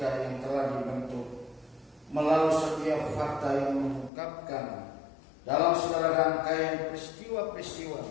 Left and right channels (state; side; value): drops out; right; at 4.1 s